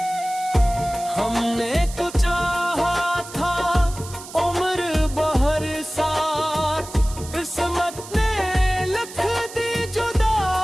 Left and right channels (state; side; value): noise; right; hiss, 15 dB below the sound